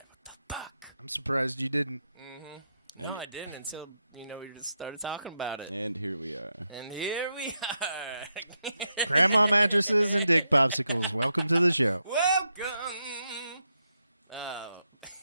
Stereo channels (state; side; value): inverted; both; correlation -0.84